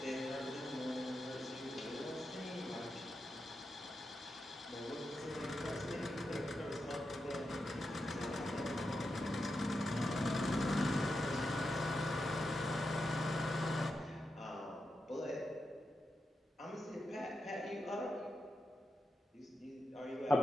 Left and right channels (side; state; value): both; normal; correlation 0.87